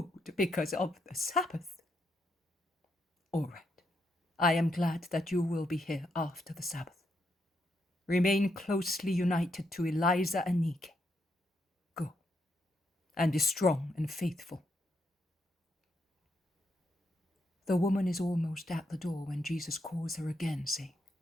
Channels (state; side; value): normal; both; correlation 0.79